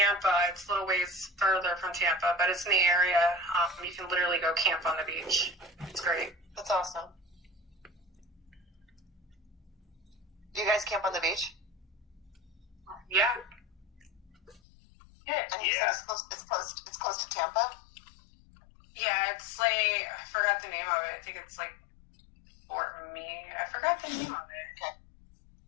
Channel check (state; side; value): drops out; right; at 14.6 s